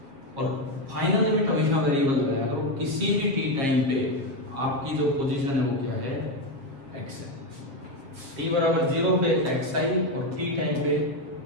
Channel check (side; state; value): left; late; 7.4 ms